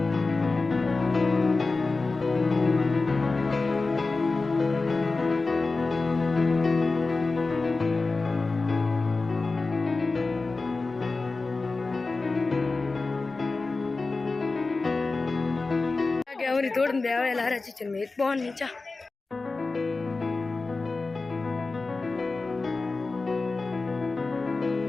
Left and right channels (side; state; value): right; quieter; 3.7 dB